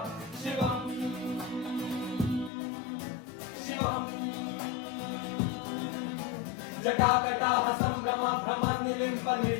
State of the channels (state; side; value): drops out; right; at 2.5 s